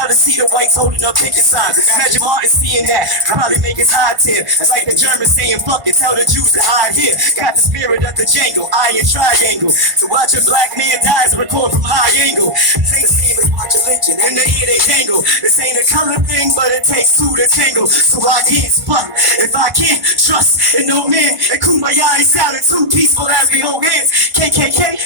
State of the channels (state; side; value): late; left; 1.5 ms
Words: to see the whites holding up picking signs. Imagine Martin seeing that, probably make his hide tear. It's like the Germans saying fuck it, tell the Jews to hide here. Got the spirit of the Django, iron triangle. To watch a black man die is a record from high angle. This ain't the same as watching lynching, in the ear they jangle. This ain't a color thing, but it takes two to tangle. So I can't spot if I can't trust in no man. And Kumbaya ain't sounding too peaceful as we hold hands.